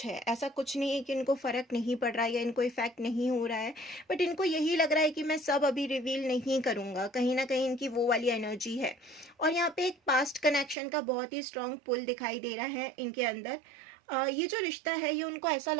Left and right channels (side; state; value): left; drops out; at 10.8 s